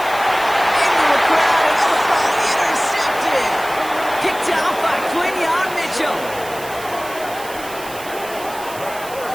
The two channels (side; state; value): right; noise; hiss, 15 dB below the sound